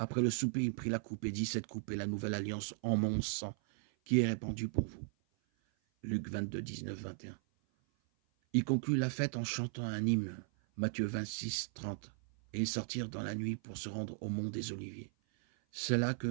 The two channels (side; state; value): left; silent; 53 dB below the other